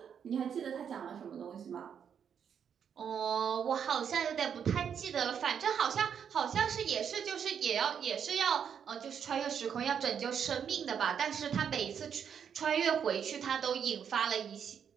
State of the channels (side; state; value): left; quieter; 7.8 dB